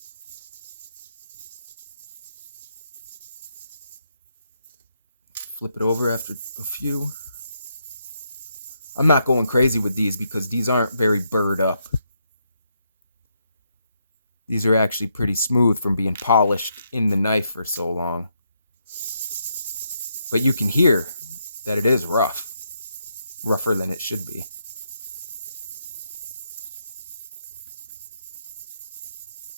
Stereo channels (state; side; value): inverted; both; correlation -0.79